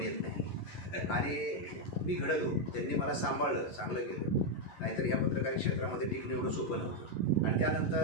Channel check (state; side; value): late; right; 11 ms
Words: येत नाही आणि मी घडलो. त्यांनी मला सांभाळलं, चांगलं केलं. नाहीतर ह्या पत्रकारी क्षेत्रामध्ये टिकणं एवढं सोपं नव्हतं. आणि